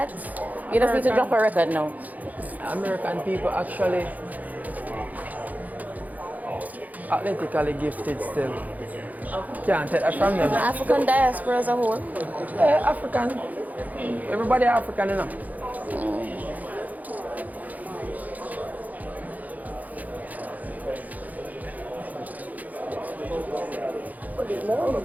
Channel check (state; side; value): late; left; 0.079 ms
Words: You just need to drop a record now. American people actually athletically gifted still. Can't take that from them. African diaspora as a whole. Yeah, African. Everybody African, you know.